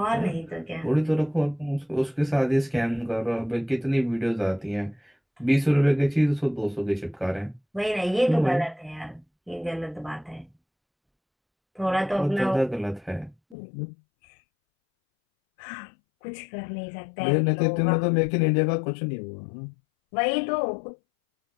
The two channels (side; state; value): right; drops out; at 13.6 s